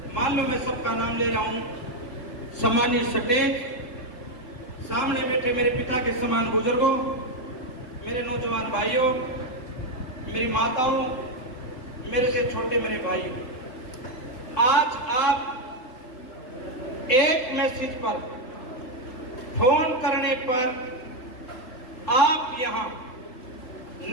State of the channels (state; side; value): late; right; 4.0 ms